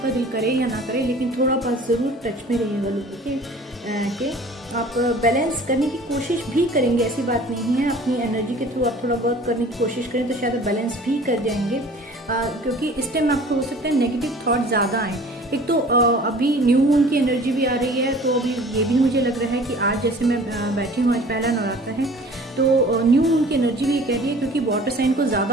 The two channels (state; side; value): normal; both; correlation 0.47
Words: दिल करे या ना करे, लेकिन थोड़ा बहुत ज़रूर टच में रहिएगा लोगों के। आप बैलेंस करने की कोशिश भी करेंगे, ऐसी बात नहीं है। अपनी एनर्जी के थ्रू आप थोड़ा बहुत करने की कोशिश करें तो शायद बैलेंस भी कर जाएंगे, क्योंकि इस टाइम आपको हो सकता है नेगेटिव थॉट ज़्यादा आए। एक तो अभी न्यू मून की एनर्जी भी आ रही है, तो अभी ये भी मुझे लग रहा है कि आज जैसे मैं बैठी हूँ, आज पहला नवरात्र है, तो न्यू मून की एनर्जी भी कह रही है, क्योंकि वाटर साइन को